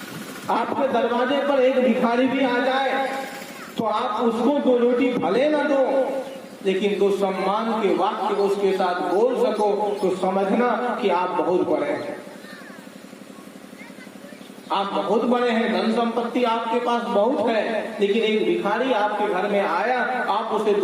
आपके दरवाजे पर एक भिखारी भी आ जाए तो आप उसको 2 रोटी भले न दो, लेकिन 2 सम्मान के वाक्य उसके साथ बोल सको, तो समझना कि आप बहुत बड़े हैं। आप बहुत बड़े हैं, धन संपत्ति आपके पास बहुत है, लेकिन एक भिखारी आपके घर में आया, आप उसे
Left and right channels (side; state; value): both; identical; correlation 1.00